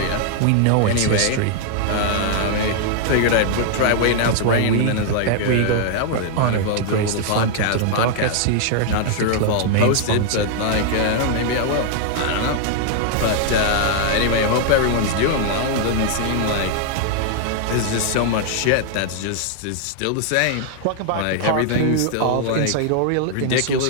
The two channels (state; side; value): different; both; correlation 0.00